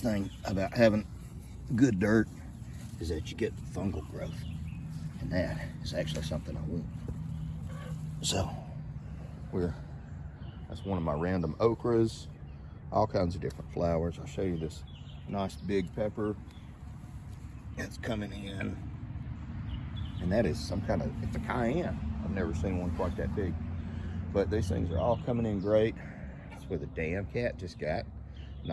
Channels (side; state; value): both; identical; correlation 1.00